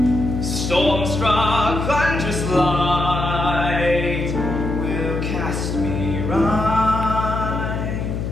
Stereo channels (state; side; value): noise; left; hum, 3 dB below the sound